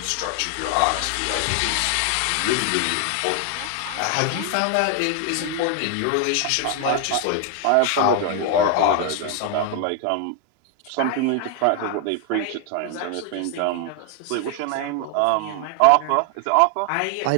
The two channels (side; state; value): both; different; correlation 0.00